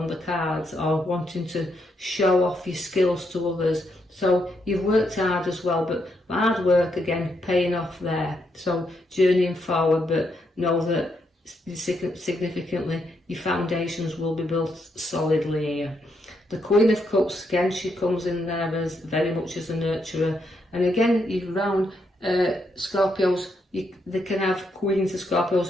cards, or wanting to show off your skills to others. So you've worked hard as well, but hard work again paying off there. So journeying forward, but know that significantly your foundations will be built solidly here. The Queen of Cups, again, she comes in there as very much as a nurturer, and again you round Scorpios, they can have Queens of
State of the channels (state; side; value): normal; both; correlation 0.79